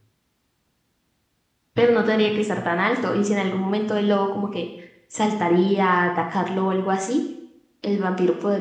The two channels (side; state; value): both; identical; correlation 1.00